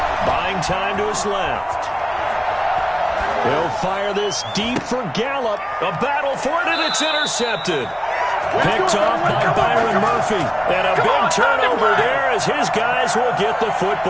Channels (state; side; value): identical; both; correlation 1.00